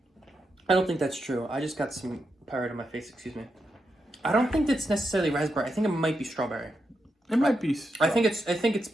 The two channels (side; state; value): both; normal; correlation 0.85